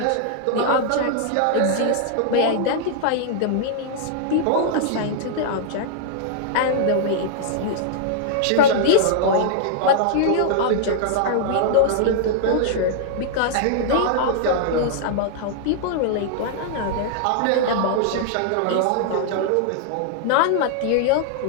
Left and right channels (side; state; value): both; different; correlation -0.01